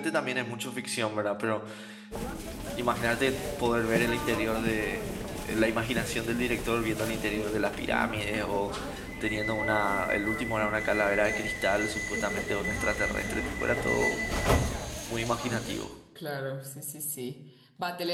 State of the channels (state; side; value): identical; both; correlation 1.00